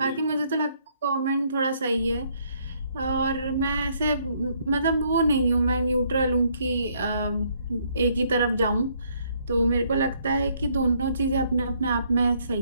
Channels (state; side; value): inverted; both; correlation -0.68